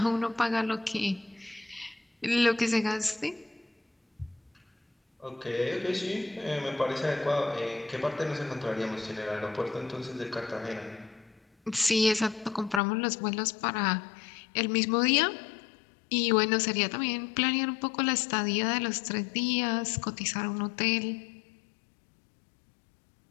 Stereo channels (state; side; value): drops out; right; at 12.8 s